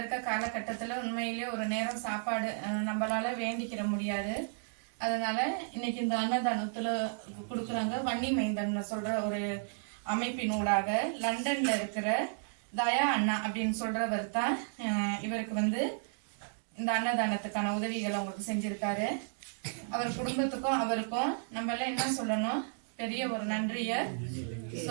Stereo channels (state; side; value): silent; left; digital silence